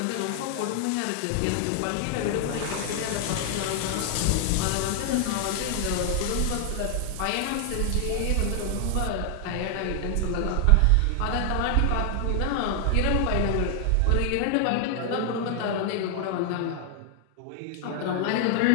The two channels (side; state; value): both; different; correlation 0.00